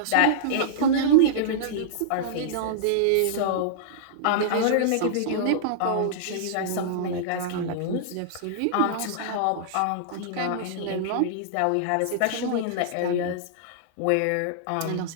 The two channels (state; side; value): different; both; correlation -0.02